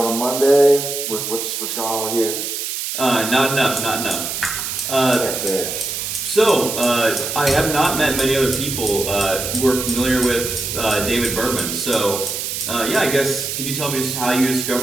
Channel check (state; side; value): noise; right; hiss, 4 dB below the sound